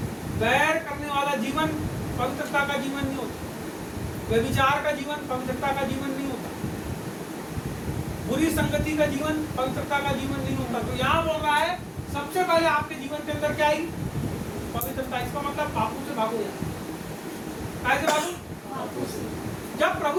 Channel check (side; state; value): both; identical; correlation 1.00